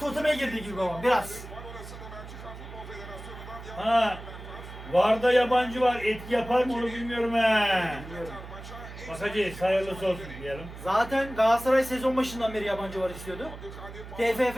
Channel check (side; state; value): right; noise; hum, 13 dB below the sound